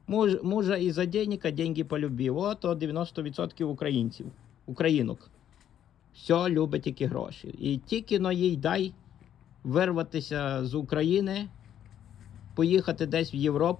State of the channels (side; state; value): right; quieter; 10.3 dB